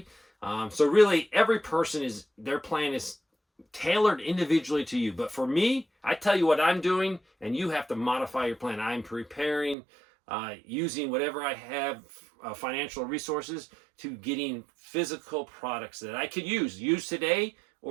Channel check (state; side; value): drops out; left; at 9.8 s